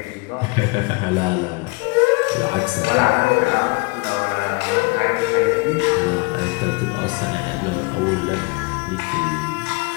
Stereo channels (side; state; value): right; quieter; 27.9 dB